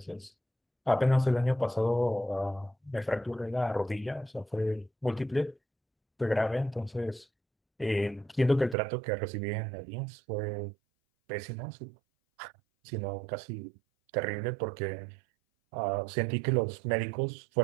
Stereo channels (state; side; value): drops out; left; at 8.8 s